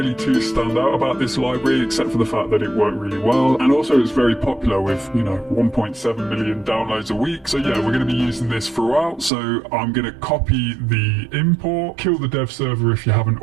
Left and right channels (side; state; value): left; drops out; at 9.3 s